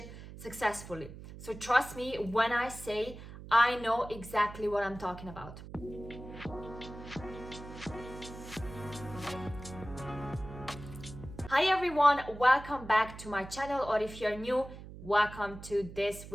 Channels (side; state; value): right; noise; hum, 14 dB below the sound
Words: successfully. So trust me when I say I know exactly what I'm talking about. Hi everyone, welcome back to my channel, or if you're new, welcome to this